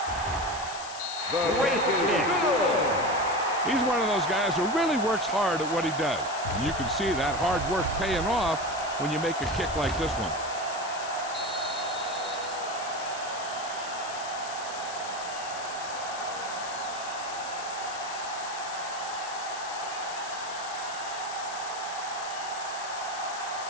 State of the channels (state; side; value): noise; left; hiss, 11 dB below the sound